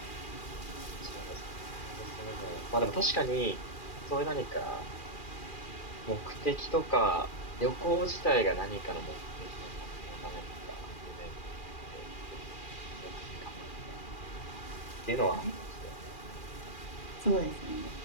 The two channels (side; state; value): right; late; 2.4 ms